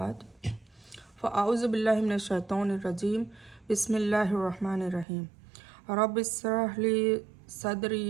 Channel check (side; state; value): left; drops out; at 5.1 s